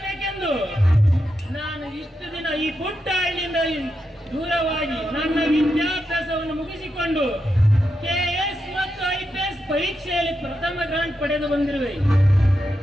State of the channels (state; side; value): normal; both; correlation 0.86